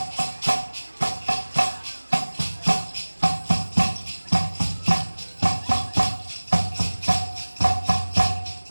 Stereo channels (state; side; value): inverted; both; correlation -1.00